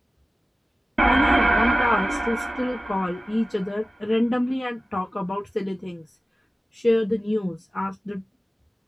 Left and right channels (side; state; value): both; normal; correlation 0.96